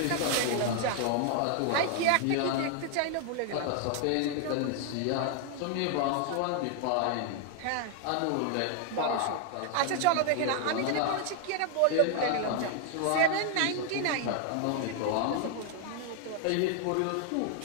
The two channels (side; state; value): both; different; correlation 0.00